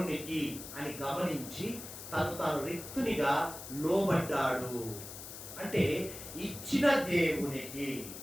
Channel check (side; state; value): left; noise; hiss, 11 dB below the sound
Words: అని గమనించి తాను రిక్తునిగా లోబడ్డాడు. అంటే ఇచ్చిన దేవునికి,